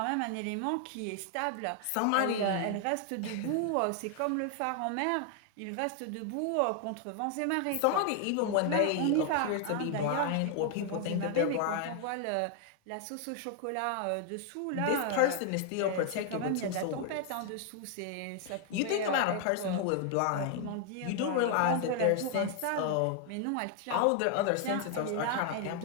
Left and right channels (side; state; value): both; different; correlation 0.00